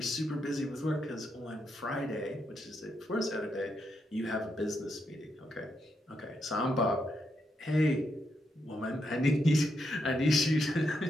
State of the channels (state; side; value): normal; both; correlation 0.81